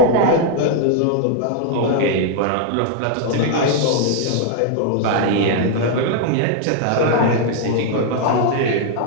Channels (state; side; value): different; both; correlation 0.00